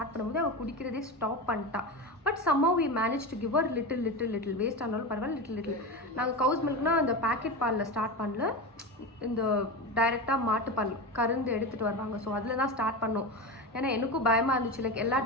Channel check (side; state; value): both; normal; correlation 0.22